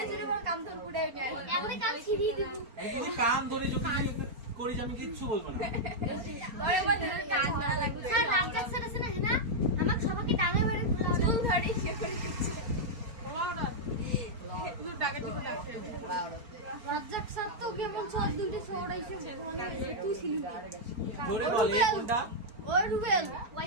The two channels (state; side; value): late; left; 4.4 ms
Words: জন্য বল কান ধরবো না এখনই কাজ ছিড়িয়ে দিব এই তুই কান ধরে যদি করিস আমি কিচ্ছু বলবো না। পরে বল কান না লাগবে স্যার রামজাক স্যার আছে না হ্যাঁ আমাকে সবাইকে টাঙে বেড়ে চুল ধরি সে করে দিচ্ছে ওরা তুই ডাকাতি করে রাখতে রামজাক স্যার তো কেমন সব দুটি ছড়াইছে ওখানে তুই ছিলি জোরে বল এ কোনটা, ওই রুবেল